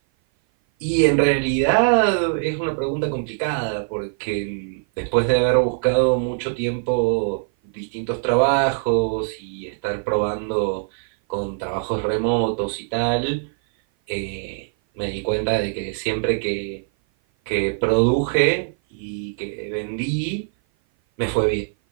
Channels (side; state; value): left; silent; 56 dB below the other